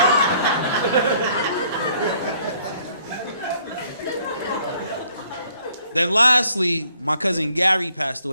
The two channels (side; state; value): both; inverted; correlation -0.63